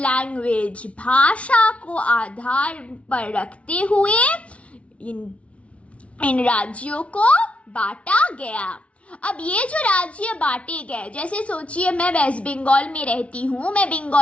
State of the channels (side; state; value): right; late; 0.063 ms